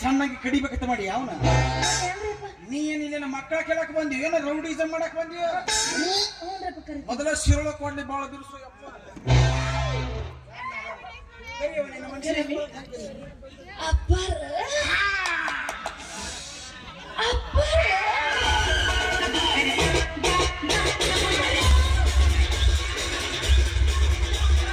ಸಣ್ಣಾಗಿ ಕಡಿಬೇಕಂತ ಮಾಡಿ ಅವನ ಏನ್ರಿಪ್ಪ? ನೀ ಏನಿಲ್ಲ ನಮ್ಮ ಮಕ್ಕಳ ಕೇಳಕ್ ಬಂದಿ ಏನೋ ರೌಡಿಸಮ್ ಮಾಡಕ್ ಬಂದಿ ಹ್ಞೂನ್ರಪ್ಪ ಕರಿತೀನಿ. ಮೊದಲ ಶಿರೋಳ ಕೊಡ್ಲಿ ಬಾಳ ಬಿರುಸು ಯಪ್ಪ ಕರೀರಿ. ಅಪ್ಪಾರ ಅಪ್ಪಾರ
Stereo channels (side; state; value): both; identical; correlation 1.00